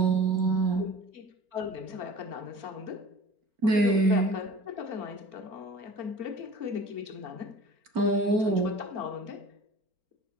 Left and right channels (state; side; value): late; left; 4.4 ms